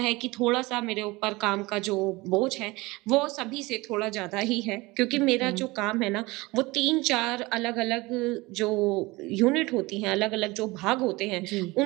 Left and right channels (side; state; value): left; quieter; 22.3 dB